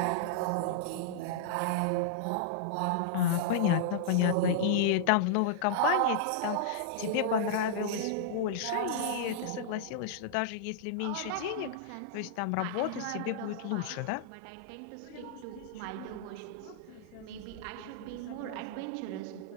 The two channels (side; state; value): both; different; correlation -0.02